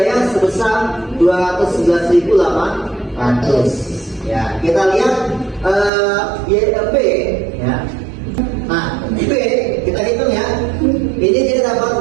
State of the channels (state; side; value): drops out; left; at 5.9 s